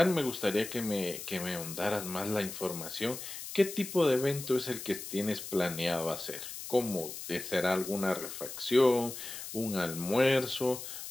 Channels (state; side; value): noise; left; hiss, 9 dB below the sound